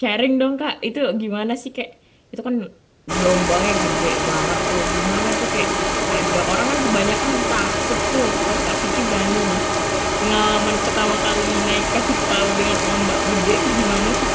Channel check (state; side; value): identical; both; correlation 1.00